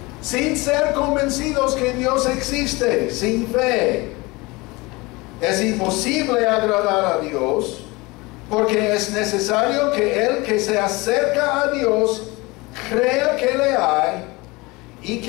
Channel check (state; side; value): quieter; right; 23.7 dB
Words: Sin ser convencidos que Dios existe, sin fe, es imposible agradar a Dios, porque es necesario que el que se acerca a Dios crea que le hay y